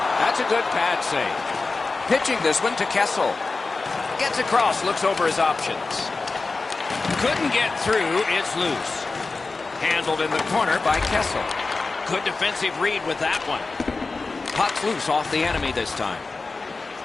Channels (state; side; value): quieter; right; 3.8 dB